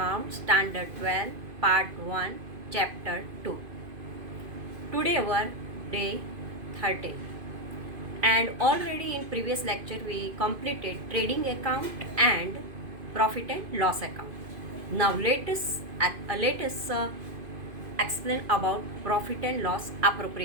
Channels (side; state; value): left; late; 2.5 ms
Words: standard 12 part 1 chapter 2. Today our day 30 and already in previous lecture we completed trading account and profit and loss account. Now let us explain about profit and loss